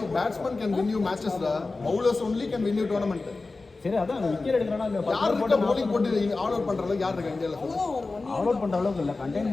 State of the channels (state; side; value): quieter; right; 3.6 dB